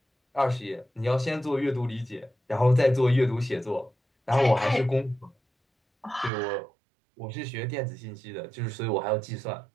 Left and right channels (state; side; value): drops out; left; at 6.3 s